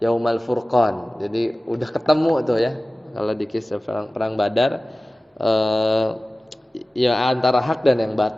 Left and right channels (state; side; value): normal; both; correlation 0.97